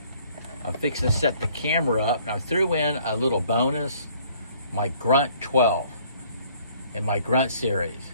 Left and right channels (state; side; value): inverted; both; correlation -0.60